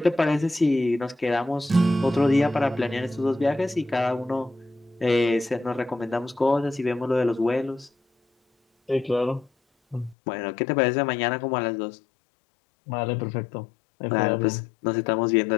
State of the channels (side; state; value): right; drops out; at 10.2 s